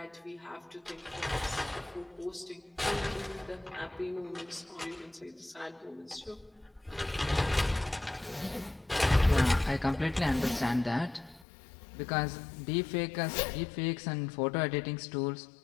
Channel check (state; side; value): drops out; right; at 11.5 s